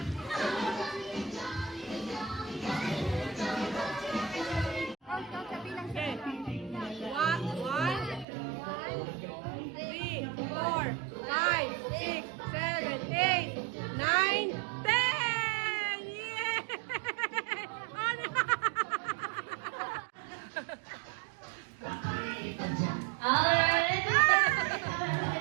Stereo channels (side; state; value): left; drops out; at 8.2 s